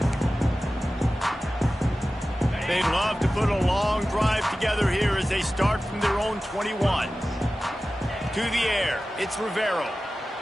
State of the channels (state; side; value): normal; both; correlation 0.95